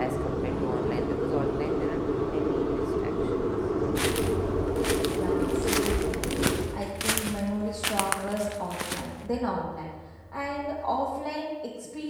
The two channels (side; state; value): both; identical; correlation 1.00